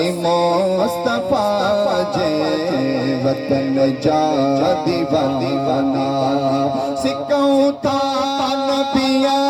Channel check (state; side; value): identical; both; correlation 1.00